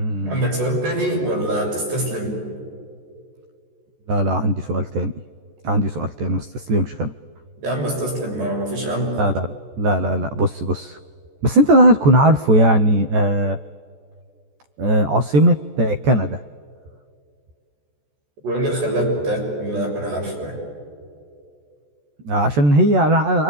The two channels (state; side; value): late; left; 14 ms